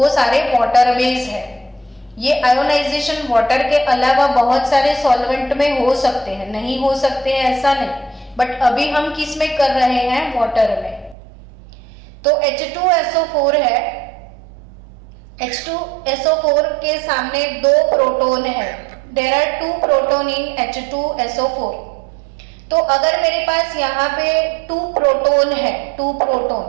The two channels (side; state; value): left; drops out; at 11.2 s